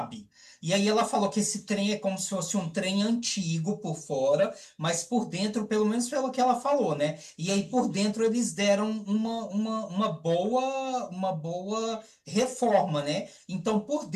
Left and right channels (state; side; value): identical; both; correlation 1.00